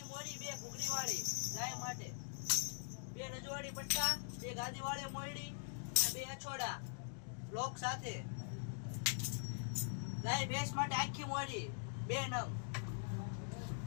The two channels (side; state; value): right; silent; digital silence